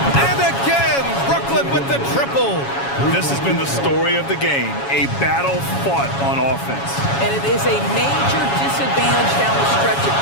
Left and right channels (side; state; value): right; late; 7.2 ms